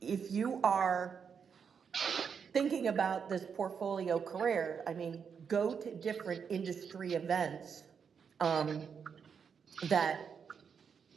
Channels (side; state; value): left; quieter; 6.6 dB